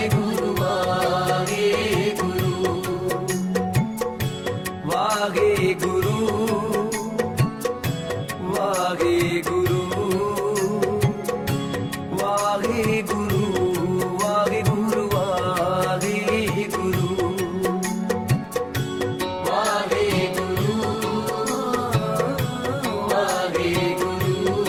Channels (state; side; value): identical; both; correlation 1.00